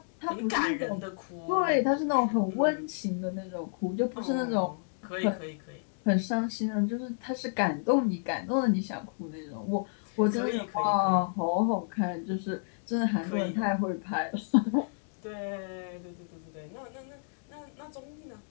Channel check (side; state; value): right; silent; digital silence